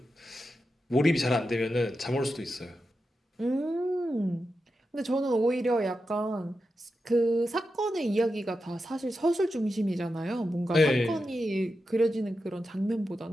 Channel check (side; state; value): both; normal; correlation 0.89